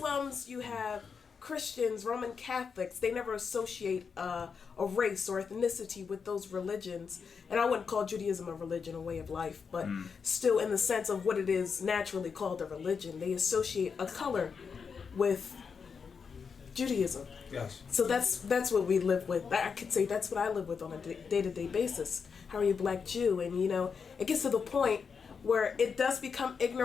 you have Christians, Roman Catholics. They never associate a race or ethnicity with those religions. And I wouldn't call Judaism a religion, a way of life, but still in the sense of what it is naturally called a religion. They associate a color with Judaism. Yes. So that's what we live with. I could say that's what I live with on a day-to-day basis. How are you a black Jew? And you know, it gets to the point where it does become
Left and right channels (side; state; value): right; quieter; 5.9 dB